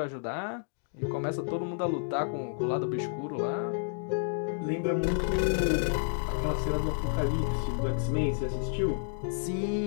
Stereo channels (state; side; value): silent; right; digital silence